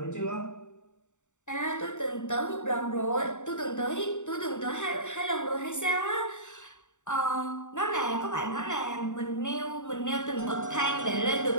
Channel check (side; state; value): right; late; 0.85 ms